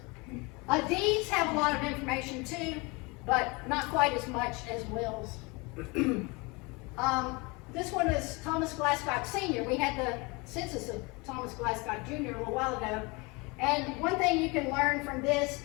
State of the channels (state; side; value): quieter; right; 27.1 dB